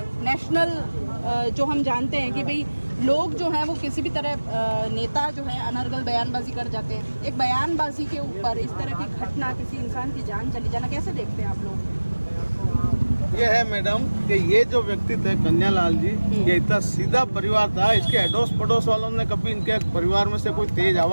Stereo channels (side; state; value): both; inverted; correlation -1.00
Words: नेशनल जो हम जानते हैं कि भाई लोग जो हैं वो किसी भी तरह नेता जो है अनर्गल बयानबाजी कर जाते हैं, एक बयानबाजी के ऊपर इस तरह की घटना, किसी इंसान की जान चली जाना, कैसे देखते हैं आप लोग? ये है मैडम कि ये जो व्यक्ति थे कन्यालाल जी, ये इतना सीधा परिवार था। इसके अड़ोस पड़ोस वालों ने कभी इनके परिवार में से कोई तेज